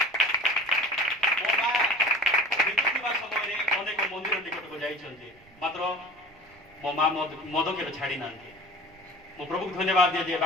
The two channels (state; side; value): noise; right; rumble, 28 dB below the sound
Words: मो माँ बीतुवा समय अनेक मंदिर निकट को जाइछन्ति मात्र मो माँ मद के छाड़ी ना मु प्रभु धन्यवाद दिए जे